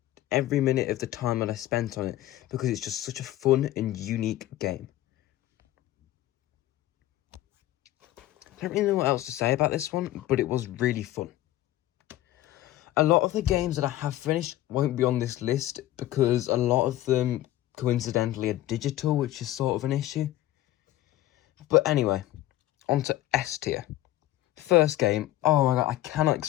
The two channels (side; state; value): right; quieter; 14.9 dB